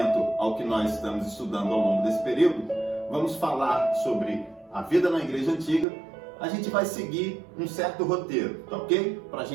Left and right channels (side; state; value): left; drops out; at 5.9 s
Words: ao que nós estamos estudando ao longo desse período, vamos falar sobre a vida na Igreja Antiga. A gente vai seguir um certo roteiro, tá ok? Para a